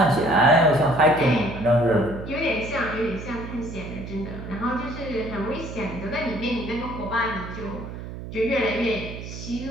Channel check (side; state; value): right; noise; hum, 10 dB below the sound